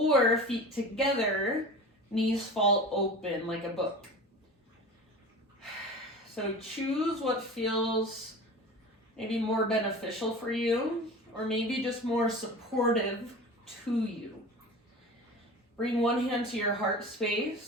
feet together, knees fall open like a book. So choose what feels maybe more beneficial for you, or maybe just more supportive to you. Bring one hand to your heart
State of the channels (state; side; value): normal; both; correlation 0.35